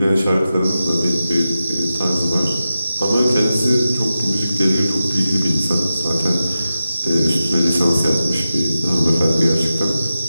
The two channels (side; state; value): both; inverted; correlation -0.92